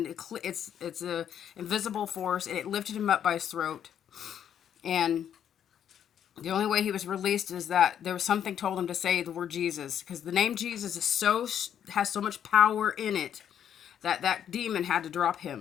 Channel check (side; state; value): right; quieter; 9.3 dB